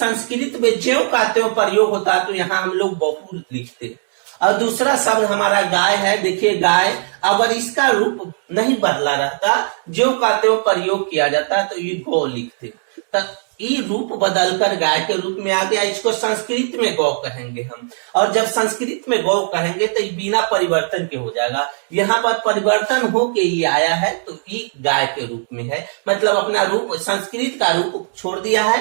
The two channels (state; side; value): silent; left; digital silence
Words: में ज्यों का त्यों प्रयोग होता है तो यहाँ हम लोग बहु लिखते। और दूसरा शब्द हमारा गाय है, देखिए गाय, अगर इसका रूप नहीं बदला रहता, ज्यों का त्यों प्रयोग किया जाता तो ये गौ लिखते। तो ये रूप बदलकर गाय के रूप में आ गया, इसको संस्कृत में गौ कहेंगे हम। और जब संस्कृत में गौ कहेंगे तो ये बिना परिवर्तन के हो जाएगा, यहाँ पर परिवर्तन होके ये आया है तो ये गाय के रूप में है, मतलब अपना रूप संस्कृत का रूप छोड़ दिया